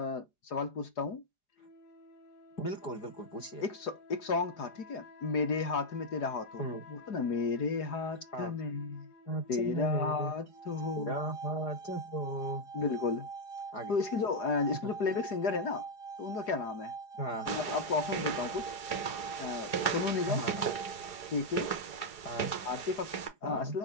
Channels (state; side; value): late; right; 4.9 ms